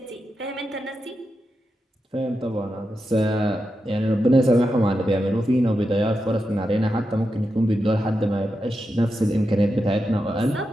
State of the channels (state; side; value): normal; both; correlation 0.88